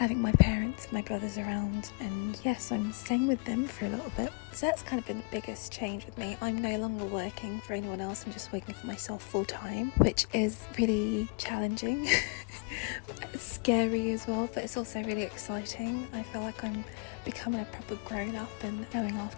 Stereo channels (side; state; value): right; quieter; 33.6 dB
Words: my parents, my brothers around, and yes, I'm staying with them for a little bit. So that's kind of been the biggest change with me. I'm no longer working for anyone else. I'm just working for myself full time, which is really challenging. It's scary as well, but it's also really exciting. I feel like I'm becoming a proper grown up and going